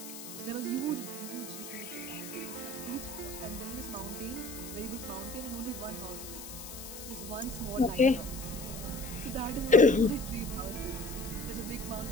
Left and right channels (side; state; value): left; noise; hiss, 11 dB below the sound